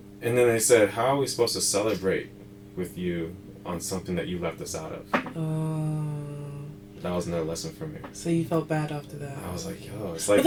And then they said, how are we supposed to celebrate with you on something that you left us out of? Oh. That was another lesson for me. So you felt bad after that. I was like, yo, it's like. But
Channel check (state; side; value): identical; both; correlation 1.00